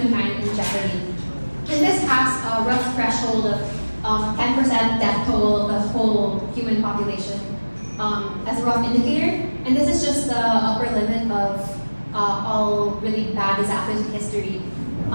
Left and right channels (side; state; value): both; inverted; correlation -1.00